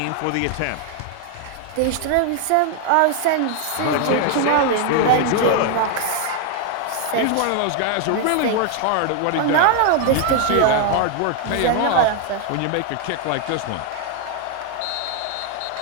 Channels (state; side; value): different; both; correlation 0.00